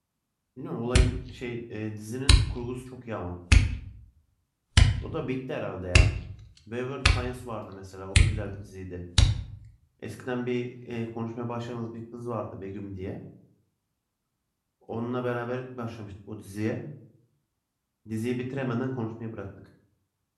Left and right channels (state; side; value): identical; both; correlation 1.00